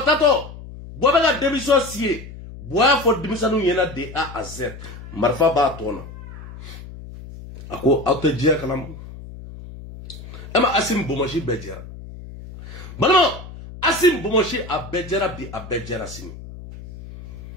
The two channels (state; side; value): noise; left; hum, 14 dB below the sound